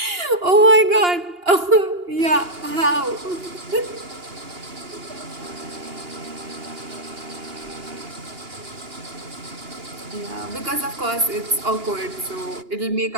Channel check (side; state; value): left; late; 2.8 ms